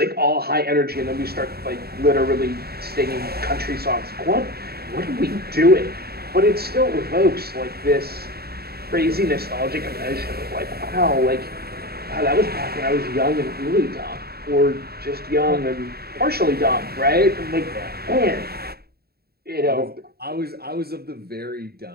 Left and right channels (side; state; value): left; late; 0.46 ms